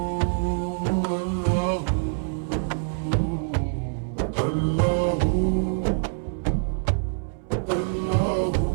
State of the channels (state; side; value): silent; left; 62 dB below the other